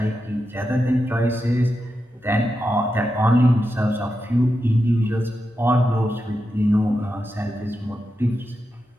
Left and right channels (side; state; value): both; normal; correlation 0.88